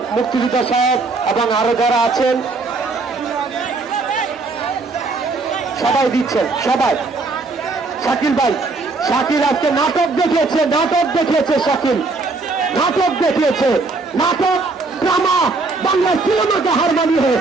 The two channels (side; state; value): left; quieter; 3.7 dB